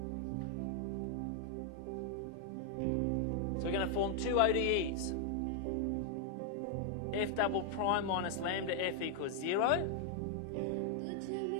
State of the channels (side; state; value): both; different; correlation 0.00